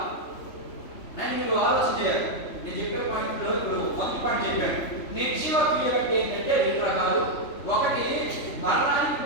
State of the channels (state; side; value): late; right; 3.4 ms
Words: అని మీరు ఆలోచన చేయాలి. నేను చెప్పే పాయింట్లో ఇప్పుడు మొదటి పాయింట్ చెప్పాను. నిర్జీవ క్రియలు అంటే ఏంటంటే 2 రకాలు. ఒకటి మరణానికి